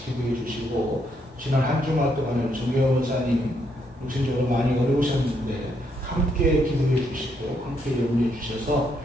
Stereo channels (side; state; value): both; normal; correlation 0.75